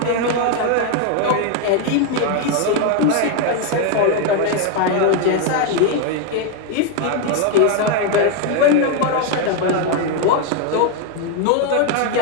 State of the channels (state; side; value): different; both; correlation 0.01